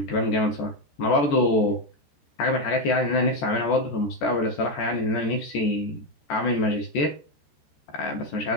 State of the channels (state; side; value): late; right; 14 ms